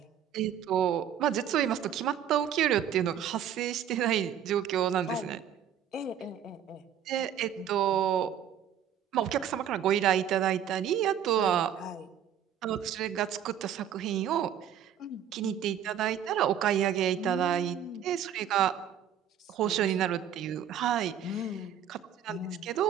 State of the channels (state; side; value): quieter; left; 9.3 dB